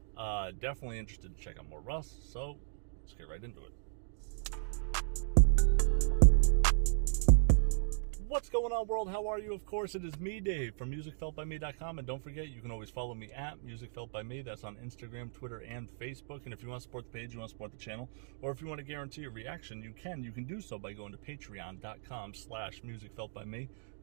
Definitely interested to check out more Russ, so let's get right into it. What's going on, world? How are you? Of course, it is me, Dave, from musicfeltbyme.com, and don't forget, you can always follow me at musicfeltbyme. That's on Instagram, Twitter, and Facebook. And if you want to support the page, you want to support the channel, or if you want to guarantee a reaction, you can do so by going to patreon.com/musicfeltbyme.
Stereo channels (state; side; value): silent; left; digital silence